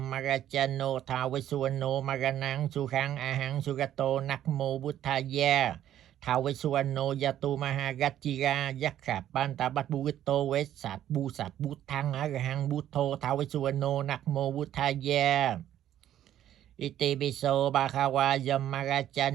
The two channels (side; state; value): left; quieter; 11.6 dB